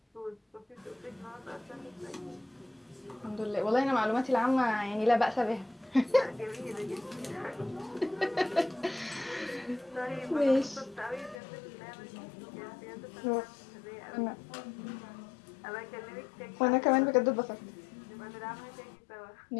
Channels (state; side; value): drops out; right; at 11.4 s